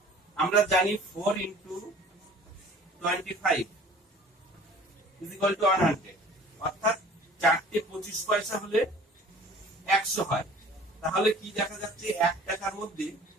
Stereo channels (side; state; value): both; normal; correlation 0.48